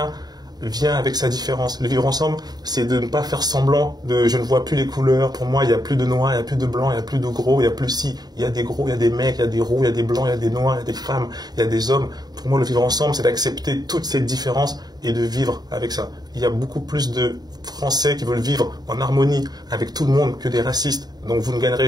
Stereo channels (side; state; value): left; late; 0.19 ms